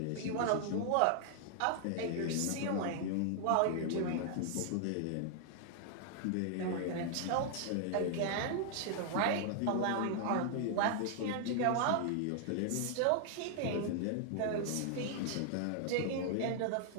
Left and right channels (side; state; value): both; different; correlation 0.00